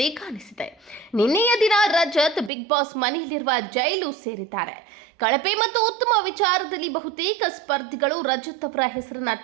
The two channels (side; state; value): left; drops out; at 2.5 s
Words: ಕಾಣಿಸಿದೆ. ನಿನ್ನೆಯ ದಿನ ರಜತ್ ಬಿಗ್ ಬಾಸ್ ಮನೆಯಲ್ಲಿರುವ ಜೈಲು ಸೇರಿದ್ದಾರೆ. ಕಳಪೆ ಮತ್ತು ಉತ್ತಮ ವಿಚಾರದಲ್ಲಿ ಬಹುತೇಕ ಸ್ಪರ್ಧಿಗಳು ರಜತ್ ಅವರ ಹೆಸರನ್ನ